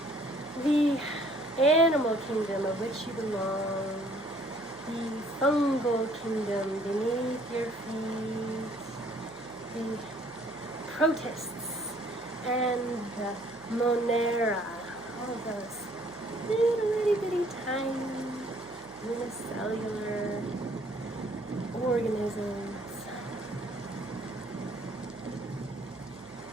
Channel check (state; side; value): noise; right; hum, 25 dB below the sound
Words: the animal kingdom of which you belong, the fungal kingdom beneath your feet, the protists and the monera, all of those little itty bitty tiny unicellular organisms.